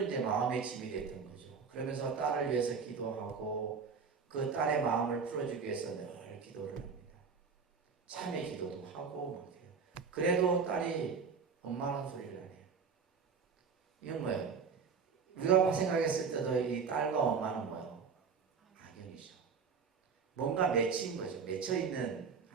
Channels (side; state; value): left; quieter; 5.7 dB